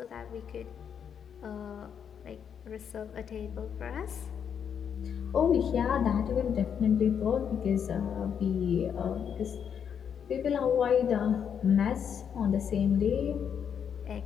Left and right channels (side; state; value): right; quieter; 7.8 dB